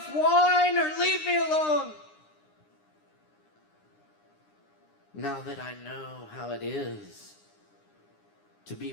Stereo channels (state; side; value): late; right; 9.8 ms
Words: wine or leave me alone. Now that I know how it is to be